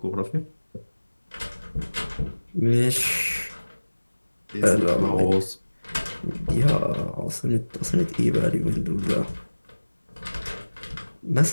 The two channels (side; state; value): both; inverted; correlation -1.00